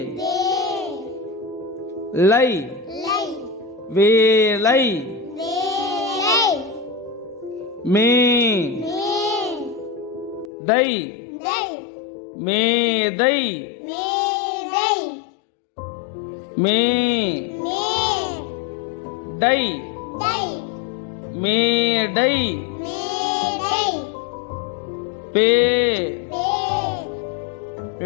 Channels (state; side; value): drops out; right; at 10.5 s